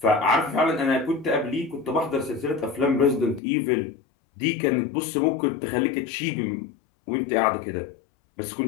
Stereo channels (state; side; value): drops out; right; at 3.4 s